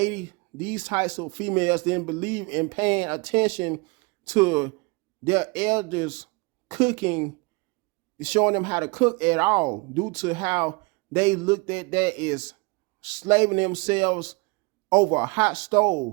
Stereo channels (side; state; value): left; quieter; 28.2 dB